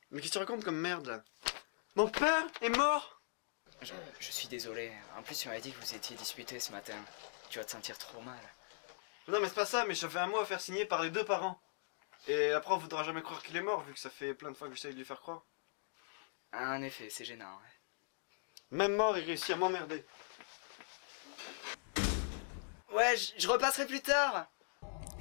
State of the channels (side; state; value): right; silent; digital silence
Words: Mais qu'est-ce que tu racontes comme merde là? Mon père est mort! Je suis désolé. En plus tu m'avais dit que vous étiez disputés ce matin. Tu vas te sentir trop mal. Non mais c'est pas ça, mais j'avais un mot à faire signer par les deux parents. Et la prof voudra jamais croire qu'il est mort vu que ça fait plein de fois que j'essaye de lui faire croire. Ah, en effet, c'est gênant. Ouais, Même mort, il réussit à m'emmerder. ouais je repasserai plus tard.